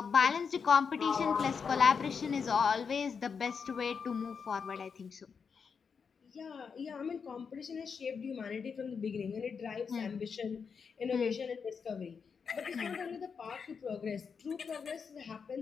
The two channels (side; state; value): right; quieter; 6.0 dB